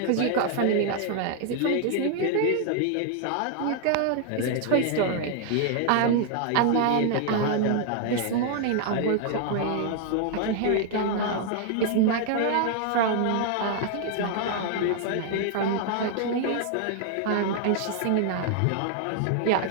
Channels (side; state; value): both; different; correlation 0.00